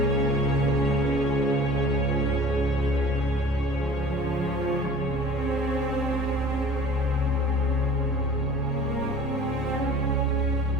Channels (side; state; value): both; normal; correlation 0.44